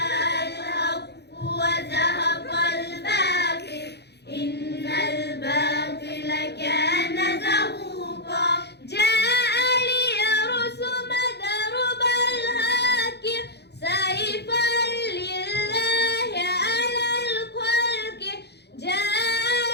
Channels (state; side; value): late; right; 0.49 ms